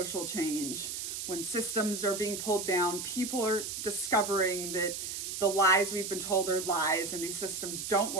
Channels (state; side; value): noise; right; hiss, 5 dB below the sound